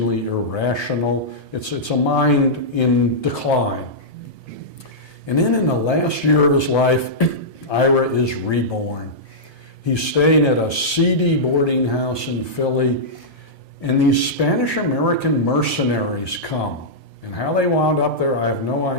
irrational. It's a mind in decline. And then in the last year of his life, Ira is reborn. He's staying at a seedy boarding house in Philly, and these Spanish-American mercenaries come. And how they wound up there, I have no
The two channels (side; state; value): right; late; 1.7 ms